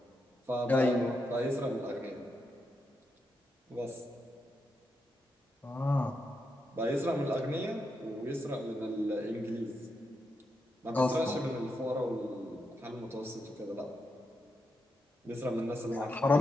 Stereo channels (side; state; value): both; normal; correlation 0.84